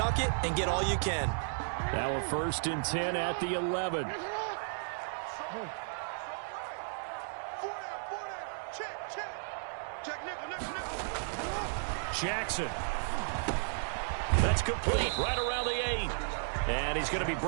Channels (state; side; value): silent; left; digital silence